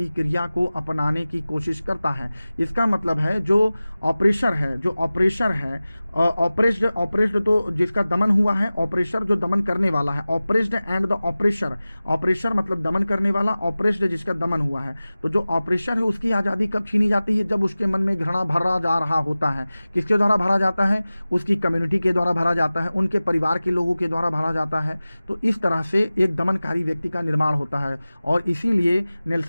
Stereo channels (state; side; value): inverted; both; correlation -0.97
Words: क्रिया को अपनाने की कोशिश करता है। इसका मतलब है जो ऑपरेशर है, ऑपरेस्ड तो जिसका दमन हुआ है, ऑपरेशर जो दमन करने वाला है। ऑपरेस्ड एंड द ऑपरेशर, ऑपरेशर मतलब दमन करने वाला, ऑपरेस्ड जिसका दमन हुआ है। तो जो ऑपरेशर है उसकी आज़ादी कब छीनी जाती है? जब उसके मन में घृणा भरा जा रहा होता है। किसके द्वारा भरा जाता है? उसकी कम्युनिटी के द्वारा भरा जाता है, उनके परिवार के लोगों के द्वारा भरा जाता है। तो इस तरह से एक दमनकारी व्यक्ति का निर्माण होता है। और इसीलिए